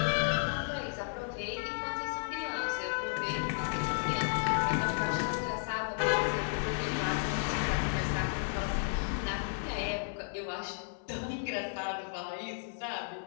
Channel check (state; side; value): silent; right; digital silence